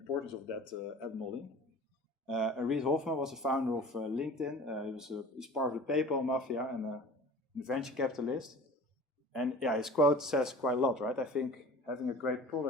of that at Mollie. Reid Hoffman was the founder of LinkedIn. He's part of the PayPal mafia and a venture capitalist. And yeah, his quote says quite a lot, right? I think having a great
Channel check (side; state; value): both; normal; correlation 0.42